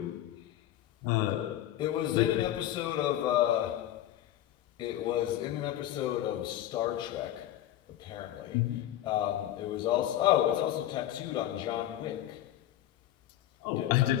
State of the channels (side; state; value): right; quieter; 12.8 dB